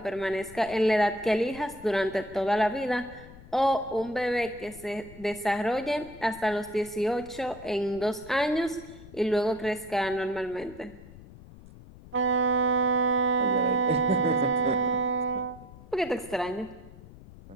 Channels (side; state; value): left; noise; rumble, 19 dB below the sound